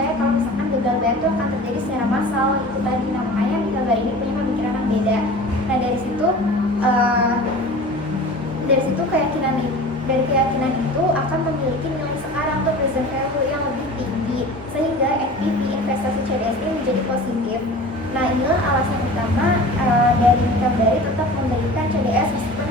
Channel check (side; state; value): both; normal; correlation 0.38